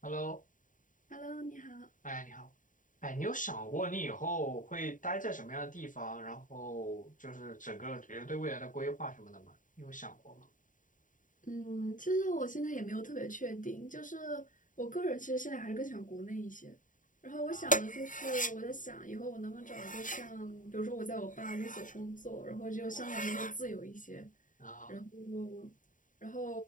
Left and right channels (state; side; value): late; right; 0.38 ms